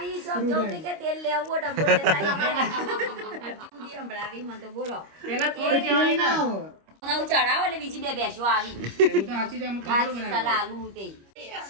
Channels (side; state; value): left; late; 25 ms